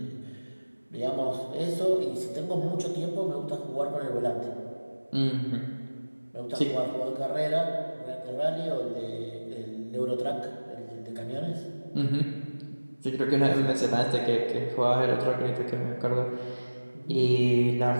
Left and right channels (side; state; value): both; inverted; correlation -1.00